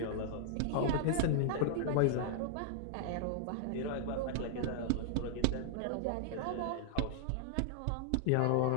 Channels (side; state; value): both; different; correlation -0.01